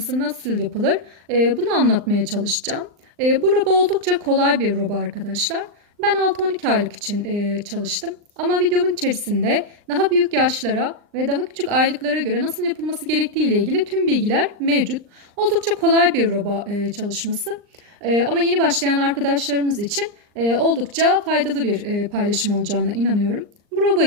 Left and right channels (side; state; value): left; late; 39 ms